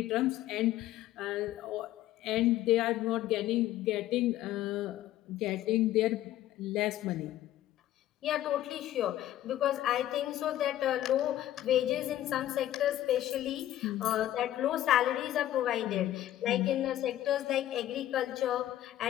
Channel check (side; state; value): right; quieter; 13.4 dB